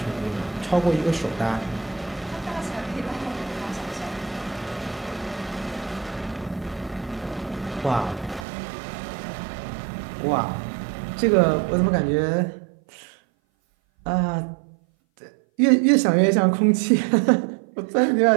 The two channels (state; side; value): drops out; left; at 8.5 s